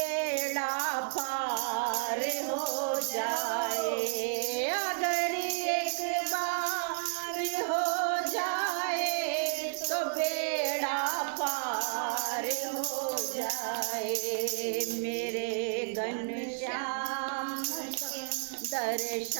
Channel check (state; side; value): silent; left; 57 dB below the other